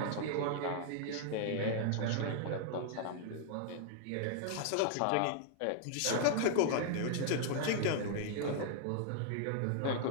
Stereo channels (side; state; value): both; different; correlation 0.00